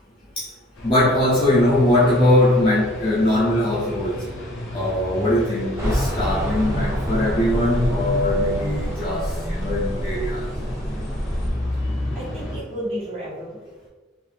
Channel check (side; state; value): both; normal; correlation 0.53